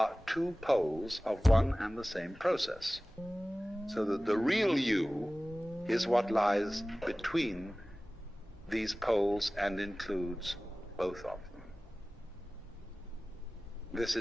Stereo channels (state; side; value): normal; both; correlation 0.98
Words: two poles of one and the same process. So that the real you is what lies between these poles and includes both of them. This